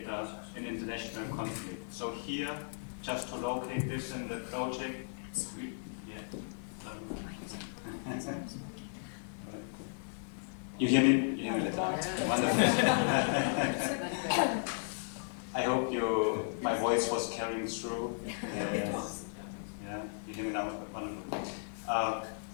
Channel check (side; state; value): right; silent; digital silence